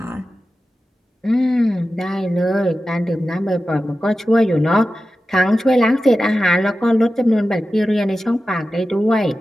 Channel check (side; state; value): both; normal; correlation 0.93